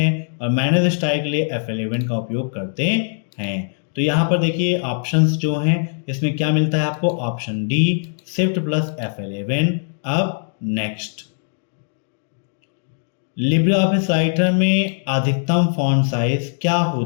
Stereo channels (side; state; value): right; silent; digital silence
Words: और मैनेज स्टाइल के लिए F11 का उपयोग करते हैं। तो यहाँ पर देखिए ऑप्शंस जो हैं इसमें क्या मिलता है आपको? Option D Shift+F11। अब नेक्स्ट, लिब्रे ऑफिस राइटर में अधिकतम फॉन्ट साइज क्या